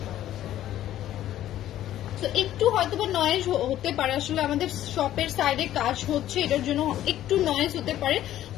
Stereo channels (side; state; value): right; quieter; 12.7 dB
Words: তো একটু হয়তো বা নয়েজ হতে পারে, আসলে আমাদের শপের সাইডে কাজ হচ্ছে, এটার জন্য একটু নয়েজ হতে পারে।